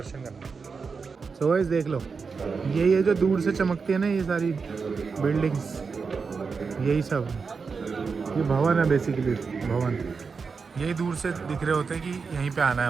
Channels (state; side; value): quieter; left; 5.1 dB